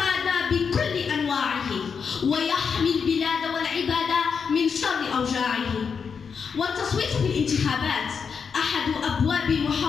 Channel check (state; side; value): quieter; right; 6.1 dB